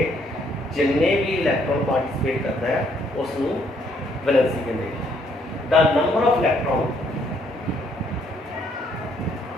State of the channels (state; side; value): normal; both; correlation 0.68